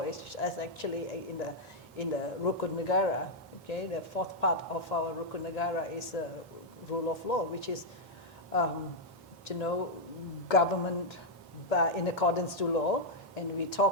is actually in the Rukun Negara. Okay, the fourth part of our Rukun Negara is the rule of law, which is, you know, government in accordance to law, and we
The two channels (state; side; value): normal; both; correlation -0.04